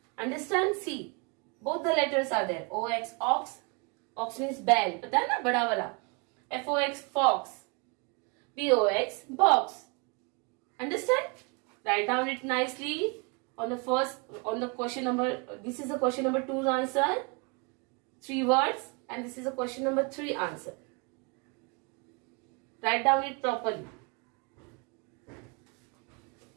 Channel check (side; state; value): left; quieter; 31.7 dB